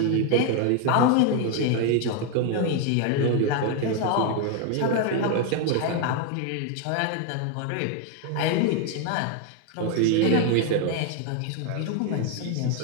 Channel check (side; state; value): both; different; correlation 0.01